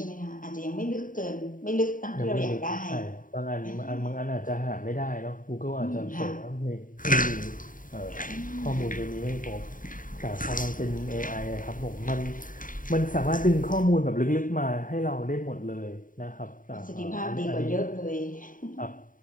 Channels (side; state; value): right; late; 0.39 ms